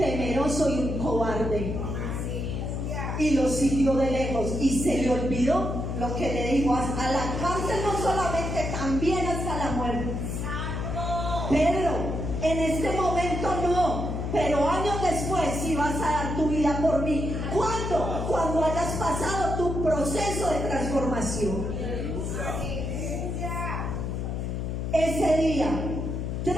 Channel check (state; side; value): noise; left; hum, 3 dB below the sound